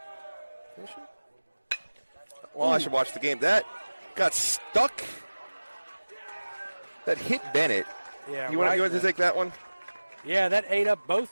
Is she? Well, I should watch the game. That got stuck. That hit Bennett. Yeah. You want to take that one? Yeah, that ate up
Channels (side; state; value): both; inverted; correlation -1.00